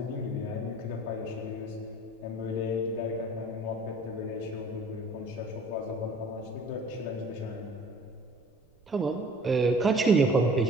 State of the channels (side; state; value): right; noise; rumble, 30 dB below the sound